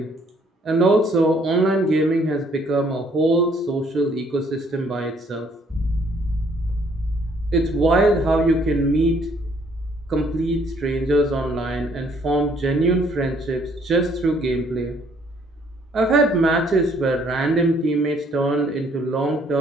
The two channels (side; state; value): both; normal; correlation 0.64